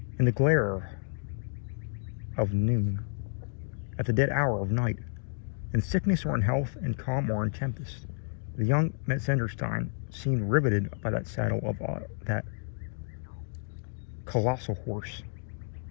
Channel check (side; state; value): right; silent; digital silence